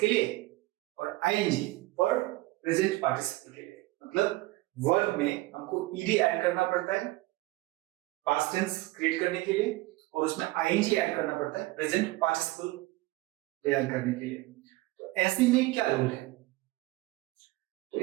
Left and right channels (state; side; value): quieter; left; 19.6 dB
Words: लिए और आईएनजी फॉर प्रेजेंट पार्टिसिपल के लिए। मतलब वर्ब में हमको ईडी ऐड करना पड़ता है पास्ट टेंस क्रिएट करने के लिए और उसमें आईएनजी ऐड करना पड़ता है प्रेजेंट पार्टिसिपल तैयार करने के लिए। तो ऐसे में क्या रूल है? तो